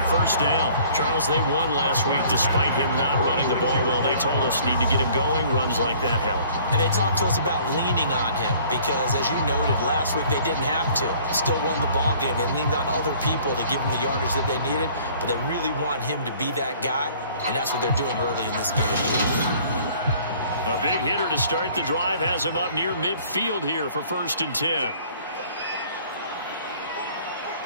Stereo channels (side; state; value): both; inverted; correlation -0.54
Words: First down. Charles, they won last week despite him not running the ball well. They told us need to get him going. Runs like that help. And they talked to us about leaning on him because, as you noted, last week they didn't have to. Still won the ball game. They leaned on other people to give them the yardage that they needed, but they really want him to be that guy, and that's what they're doing early in this game. A big hitter to start the drive has him up near midfield here for 1st and 10.